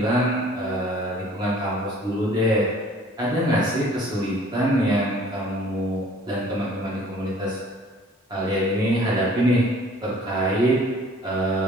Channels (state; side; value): normal; both; correlation 0.53